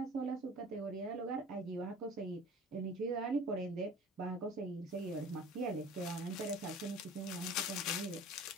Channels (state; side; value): normal; both; correlation 0.44